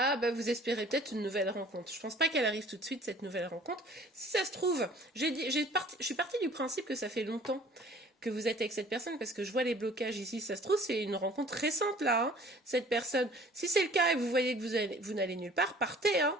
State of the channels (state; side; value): normal; both; correlation 0.51